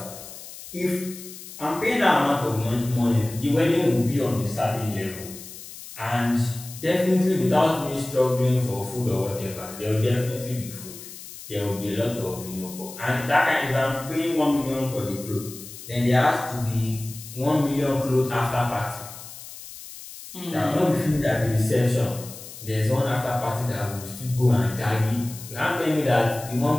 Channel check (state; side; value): noise; left; hiss, 14 dB below the sound